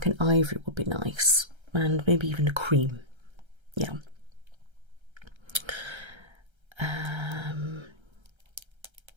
an ivory would be nice, and maybe even a cream. Yeah.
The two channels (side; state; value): left; late; 1.3 ms